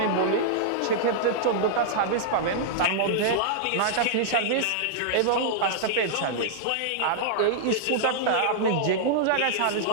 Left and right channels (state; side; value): different; both; correlation -0.01